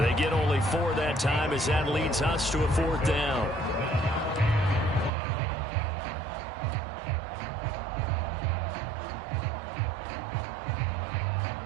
get only 4 that time as that leads us to a 4th down.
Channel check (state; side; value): drops out; left; at 5.1 s